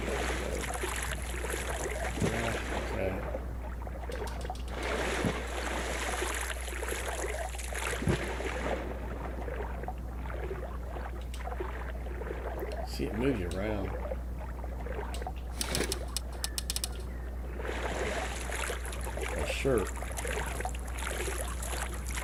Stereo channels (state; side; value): identical; both; correlation 1.00